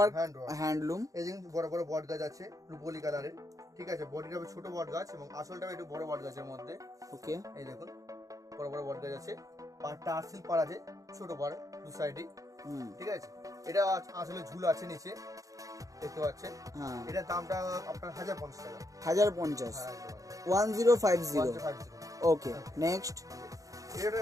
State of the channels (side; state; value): left; late; 0.16 ms